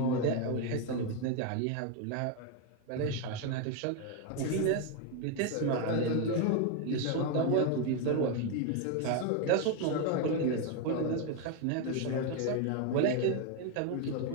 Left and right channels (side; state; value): both; different; correlation 0.01